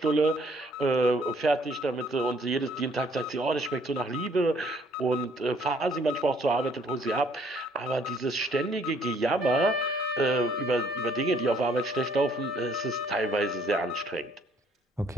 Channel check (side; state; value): both; normal; correlation 0.63